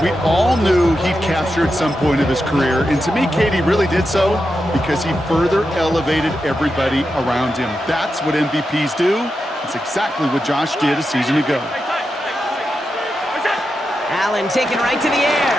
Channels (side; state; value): both; normal; correlation 0.88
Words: We all knew he'd capture at some point of his career. And to me, Katie really did so because he further elevated everybody around him. That's what MVPs do. It's exactly what Josh did a season ago. Allen taken right to the